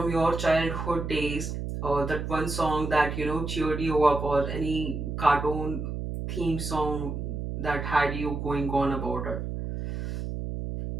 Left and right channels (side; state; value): right; noise; hum, 4 dB below the sound